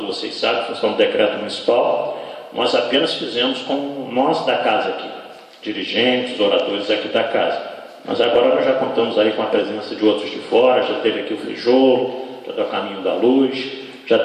vocês sabem, função do decreto municipal, nós apenas fizemos com nós da casa aqui, dirigentes, oradores aqui da casa. Mas agora nós já contamos aí com a presença de outros de fora, já teve aqui o Frijolo, já do Caminho da Luz, já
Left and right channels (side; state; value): both; identical; correlation 1.00